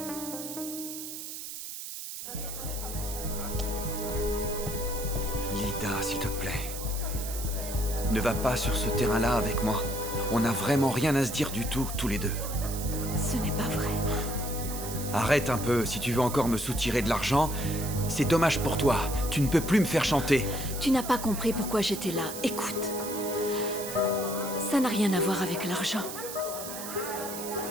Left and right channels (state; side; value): noise; right; hiss, 8 dB below the sound